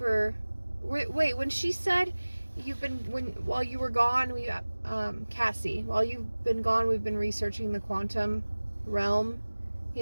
Wait, when she said while you were gone, Cassie, while you've been gone, we've been researching the quantum realm,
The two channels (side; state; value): both; inverted; correlation -1.00